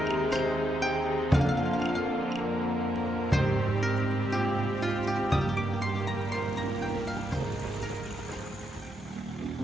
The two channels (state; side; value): normal; both; correlation 0.81